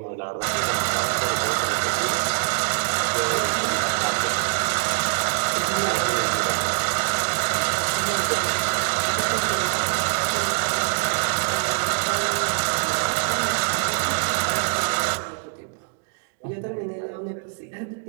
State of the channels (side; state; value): left; silent; 63 dB below the other